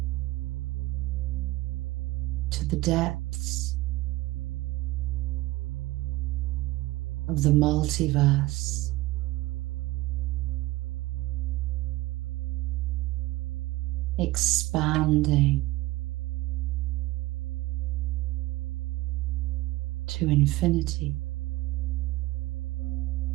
To the depths of the multiverse. expanding to infinity.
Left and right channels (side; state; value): left; quieter; 18.8 dB